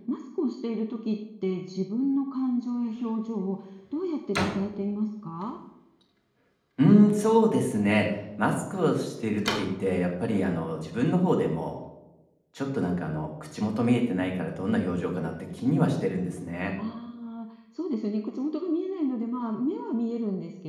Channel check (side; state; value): both; identical; correlation 1.00